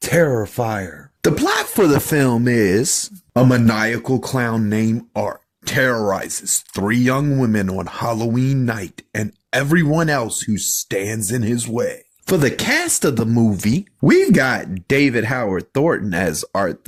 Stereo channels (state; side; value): identical; both; correlation 1.00